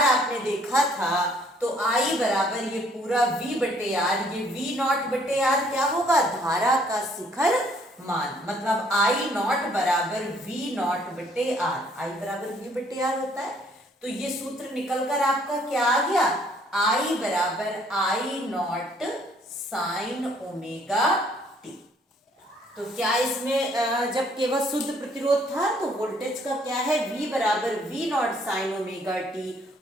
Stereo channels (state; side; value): normal; both; correlation 0.63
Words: आपने देखा था, तो I बराबर ये पूरा V बटे आर, ये V नॉट बटे आर क्या होगा? धारा का शिखर मान, मतलब I नॉट बराबर V नॉट बटे आर, I बराबर V बटे आर होता है। तो ये सूत्र निकलकर आपका क्या आ गया? I बराबर I not sine omega T. तो क्या इसमें जब केवल शुद्ध प्रतिरोध था तो वोल्टेज का क्या है? V बराबर V not sine omega t